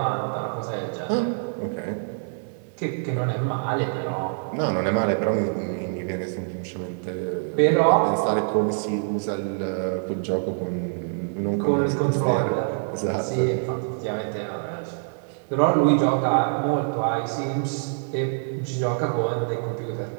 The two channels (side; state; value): left; silent; digital silence